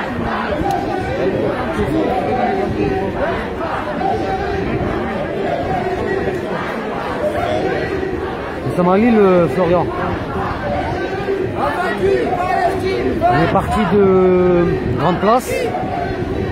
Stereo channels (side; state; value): both; identical; correlation 1.00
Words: Nous sommes à Lille, Florian. On est parti de Grande Place.